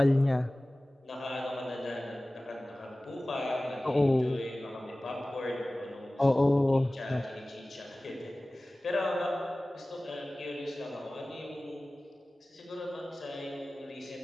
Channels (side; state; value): both; normal; correlation 0.98